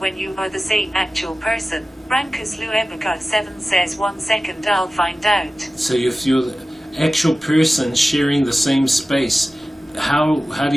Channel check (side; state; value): both; normal; correlation 0.96